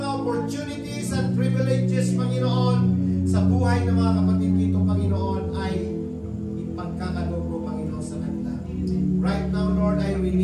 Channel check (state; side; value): identical; both; correlation 1.00